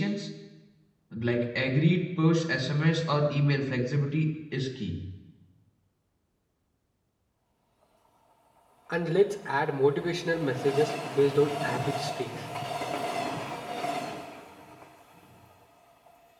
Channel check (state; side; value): identical; both; correlation 1.00